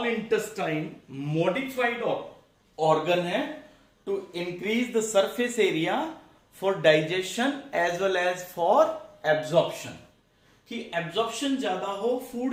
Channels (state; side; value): identical; both; correlation 1.00